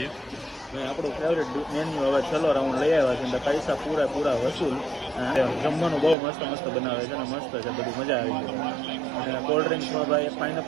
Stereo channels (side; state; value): left; drops out; at 6.2 s